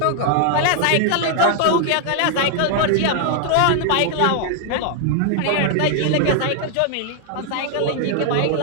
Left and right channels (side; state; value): both; different; correlation 0.00